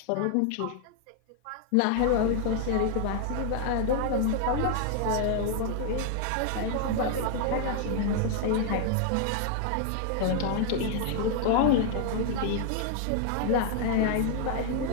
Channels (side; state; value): both; different; correlation 0.00